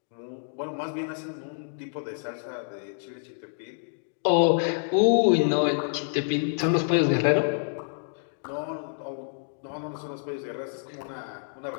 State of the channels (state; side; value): silent; right; digital silence